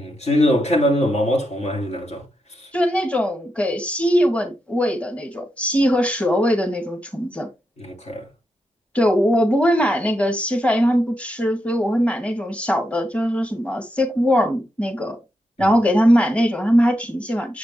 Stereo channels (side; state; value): both; normal; correlation 0.85